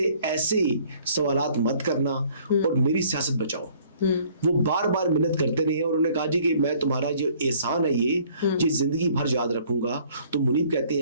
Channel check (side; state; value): both; inverted; correlation -0.58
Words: ایسے سوالات مت کرنا اور میری سیاست بچاؤ. وہ بار بار منت کرتے رہے اور انہوں نے کہا جی کہ میں تمہارا جو احسان ہے یہ زندگی بھر یاد رکھوں گا. تو منیب کہتے